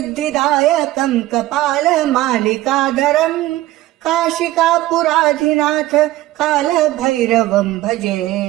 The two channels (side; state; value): left; quieter; 16.2 dB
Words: कपालमालिकाधरम् काशिकापुराधिनाथ कालभैरवम् भजे।